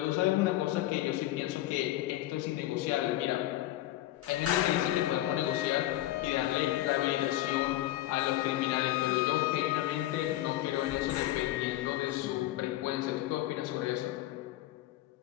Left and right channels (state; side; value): quieter; right; 15.2 dB